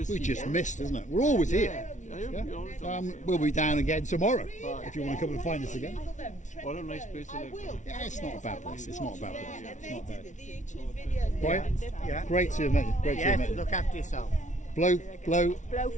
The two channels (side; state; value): right; late; 0.36 ms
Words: We see just you. missed, isn't it? We're always here. Yeah, you're all the time. We'll be down again tomorrow if you want to come and find us again. What a nice place to live. Yeah, it's not a bad place. It's not a bad place. It's not bad. The YouTube videos. Right? Yeah. Great to have met you. Great to have met Yes, you. look after yourself. Blowfield.